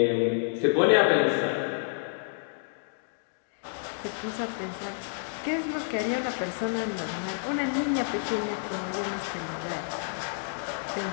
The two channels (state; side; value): silent; right; digital silence